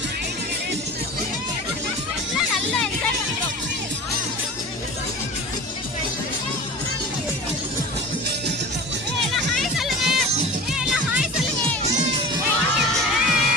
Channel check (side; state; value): both; normal; correlation 0.36